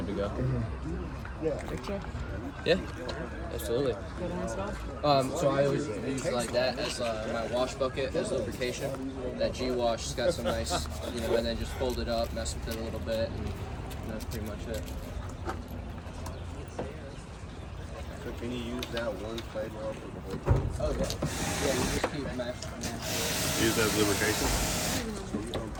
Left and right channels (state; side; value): identical; both; correlation 1.00